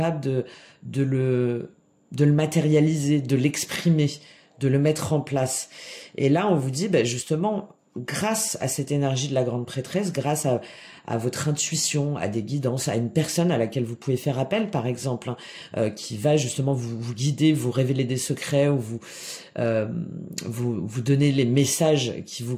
de le matérialiser, de l'exprimer, de le mettre en place. Et là, on vous dit, justement, grâce à cette énergie de la grande prêtresse, grâce à votre intuition, à des guidances, à une personne à laquelle vous pouvez faire appel, par exemple, hein, qui va justement vous guider, vous révéler des secrets ou vous donner les messages qui vous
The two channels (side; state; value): both; identical; correlation 1.00